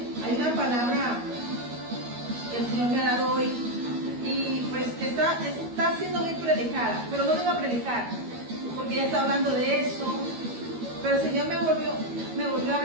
Hay una palabra que el Señor me ha dado hoy y pues está siendo muy predicada, pero no vengo a predicar porque ya está hablando de eso, pero el Señor me volvió a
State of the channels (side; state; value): left; late; 13 ms